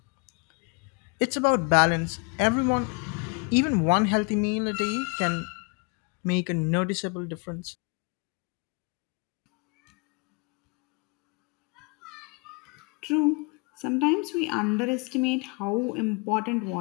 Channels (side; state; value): right; quieter; 31.1 dB